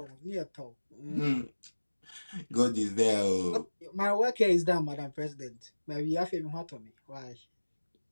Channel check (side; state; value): both; inverted; correlation -1.00